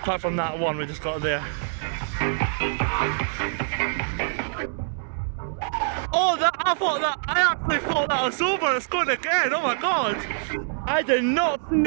from that one we just got there. Oh, I actually thought that was over. It's going again. Oh my god! I did not see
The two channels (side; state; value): left; silent; digital silence